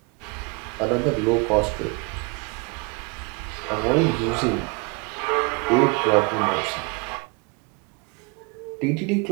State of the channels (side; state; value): left; quieter; 30.5 dB